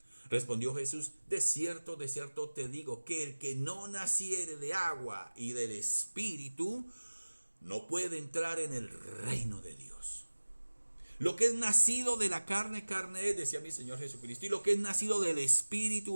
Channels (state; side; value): inverted; both; correlation -1.00